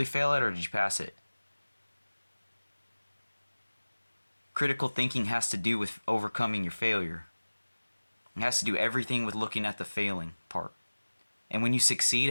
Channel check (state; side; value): inverted; both; correlation -1.00